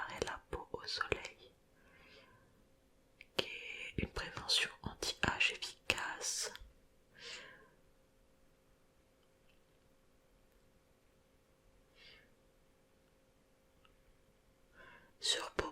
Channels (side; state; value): both; identical; correlation 1.00